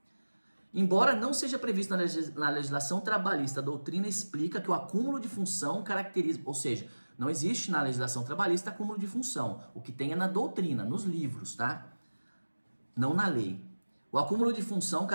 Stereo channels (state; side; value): inverted; both; correlation -1.00